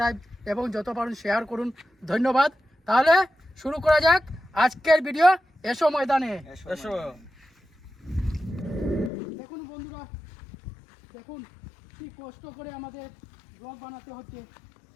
এবং যত পারেন শেয়ার করুন। ধন্যবাদ। তাহলে শুরু করা যাক আজকের ভিডিও। এসো ময়দানে, এসো। দেখুন বন্ধুরা, দেখুন কি কষ্ট করে আমাদের ব্লগ বানাতে হচ্ছে।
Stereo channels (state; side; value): drops out; right; at 9.1 s